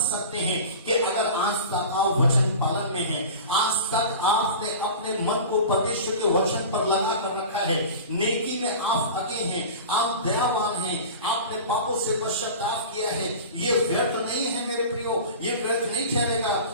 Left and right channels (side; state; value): both; inverted; correlation -0.35